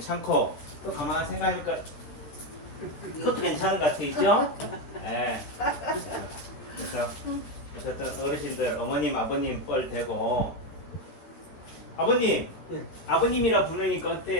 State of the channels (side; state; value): right; late; 14 ms